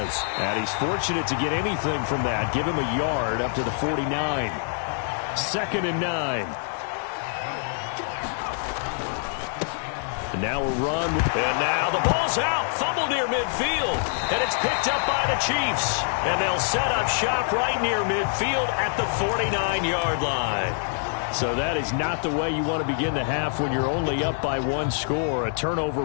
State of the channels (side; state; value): right; silent; digital silence